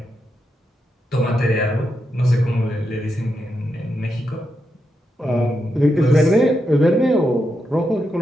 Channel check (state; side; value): normal; both; correlation 0.85